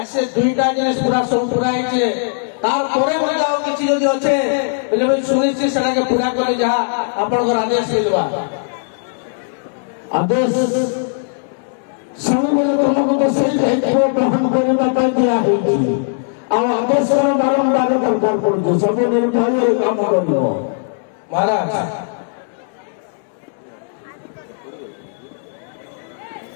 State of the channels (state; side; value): silent; right; digital silence